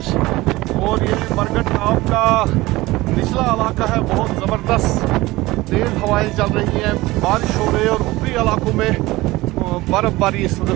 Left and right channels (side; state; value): left; quieter; 19.5 dB